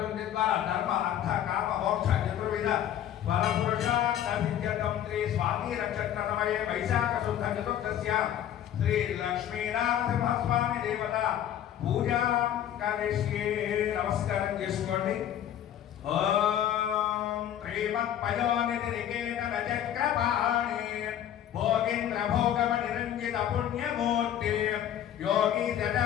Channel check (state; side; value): quieter; right; 10.7 dB